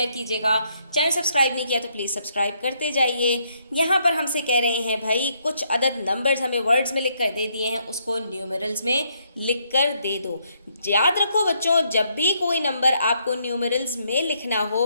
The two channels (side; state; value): both; inverted; correlation -0.73